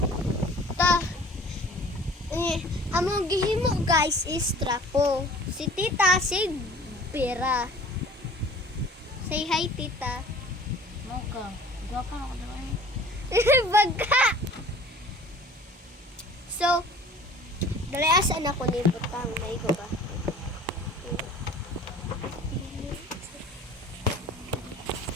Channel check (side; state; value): both; normal; correlation 0.47